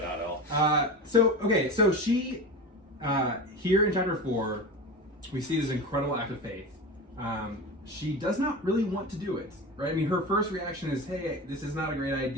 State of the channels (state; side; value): normal; both; correlation 0.28